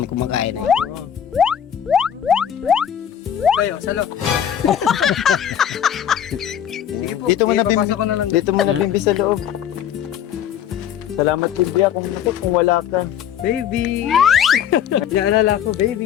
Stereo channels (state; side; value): quieter; right; 9.5 dB